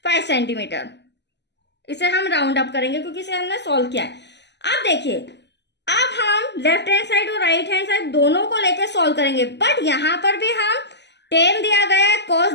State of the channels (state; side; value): late; right; 0.50 ms